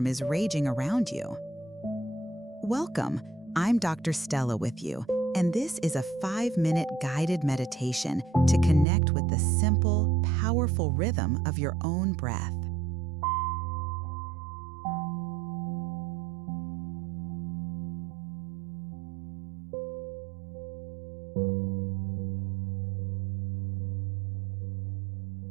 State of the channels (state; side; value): drops out; left; at 8.8 s